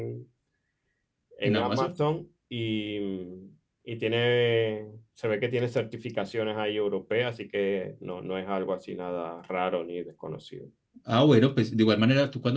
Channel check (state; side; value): identical; both; correlation 1.00